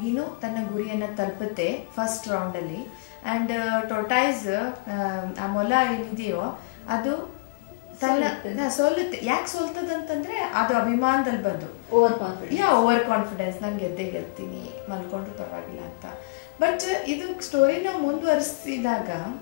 ತನ್ನ ಗುರಿಯನ್ನು ತಲುಪುತ್ತೆ ಫಸ್ಟ್ ರೌಂಡಲ್ಲಿ. ಆ್ಯಂಡ್ ಟೋಟಾಯ್ಸ್ ಆ ಮೊಲ ಏನಿದೆಯೋ ಅದು ತನ್ನ ಸೋಲುತ್ತೆ. ಯಾಕೆ ಸೋಲ್ತದಂತಂದರೆ ಅದು ಅಭಿಮಾನದಲ್ಲಿ ಬಂದು ಓವರ್ ಕಾನ್ಫಿಡೆನ್ಸ್, ನಾನು ಗೆಲ್ತೀನಿ, ಮಲ್ಕೊಂಡ್ರು ಪರವಾಗಿಲ್ಲ ಅಂತ. ಬಟ್ ಇದು ಸ್ಟೋರಿ ನಾವು ಮುಂದುವರಿಸಿದಾಗ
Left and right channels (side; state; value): right; quieter; 29.2 dB